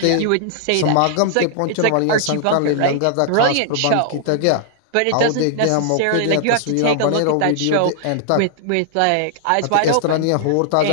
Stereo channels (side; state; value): both; different; correlation -0.01